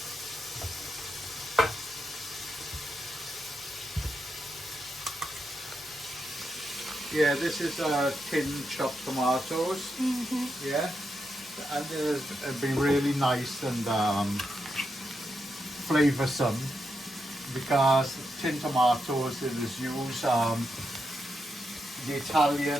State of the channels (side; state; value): both; normal; correlation 0.84